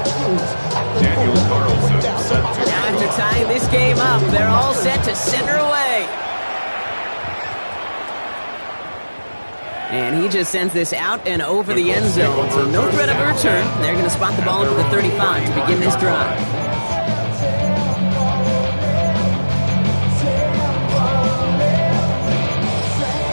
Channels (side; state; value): both; inverted; correlation -1.00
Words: Daniel Carlson set to Now after tying this game up, they're all set to center away. And he just sends this out and over the end zone. So no threat of a return. They're going to spot the ball into the 35 to begin this drive.